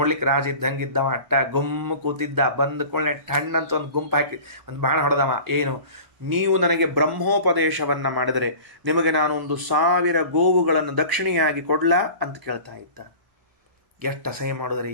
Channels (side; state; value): left; late; 1.0 ms